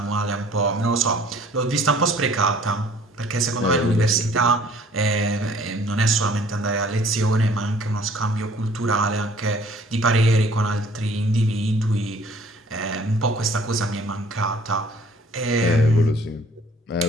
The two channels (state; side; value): normal; both; correlation 0.55